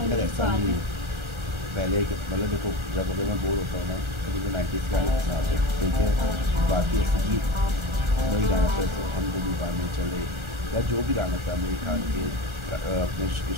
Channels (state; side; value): late; left; 1.4 ms